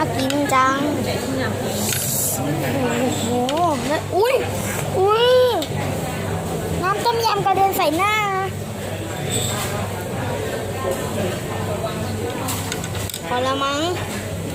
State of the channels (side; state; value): both; identical; correlation 1.00